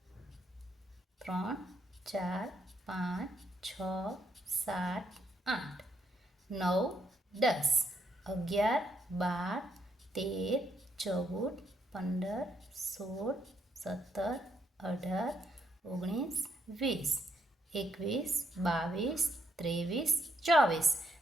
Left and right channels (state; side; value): normal; both; correlation 0.75